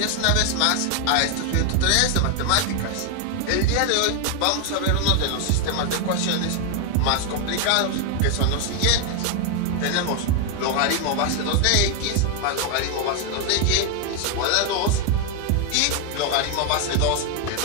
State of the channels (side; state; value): both; different; correlation 0.01